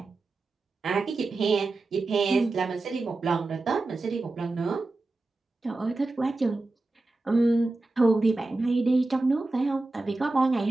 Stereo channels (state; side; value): quieter; left; 3.2 dB